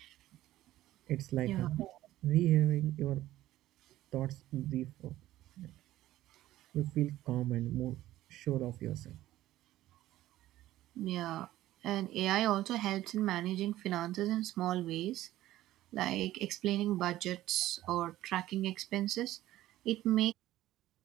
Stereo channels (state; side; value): quieter; left; 14.9 dB